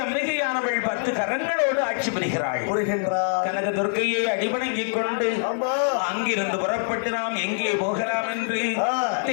அம்பிகையானவள் 10 கரங்களோடு ஆட்சி புரிகிறாள். கனக துர்க்கையை அடிபணங்கிக் கொண்டு அங்கிருந்து புறப்பட்டு நாம் எங்கே போகலாம் என்று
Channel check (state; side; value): silent; right; 62 dB below the other